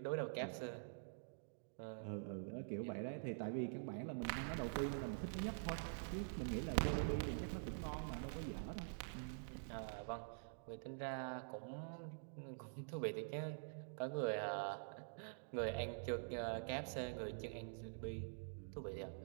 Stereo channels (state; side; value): silent; left; digital silence